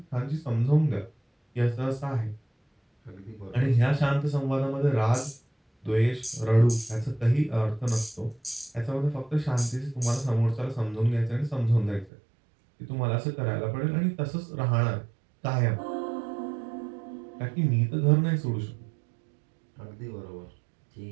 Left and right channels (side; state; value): left; drops out; at 12.1 s